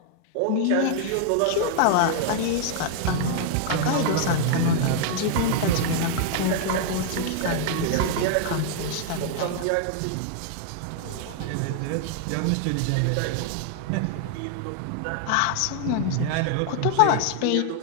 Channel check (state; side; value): different; both; correlation 0.00